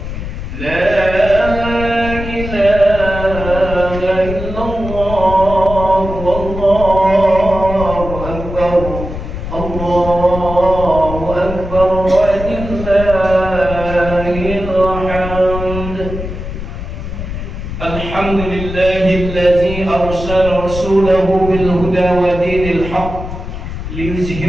La ilaha illallah, wallahu akbar, Allahu akbar, walillahil hamd. Alhamdulillahillazi arsala rasulahu bil huda wa dinil haqq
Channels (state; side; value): noise; left; rumble, 8 dB below the sound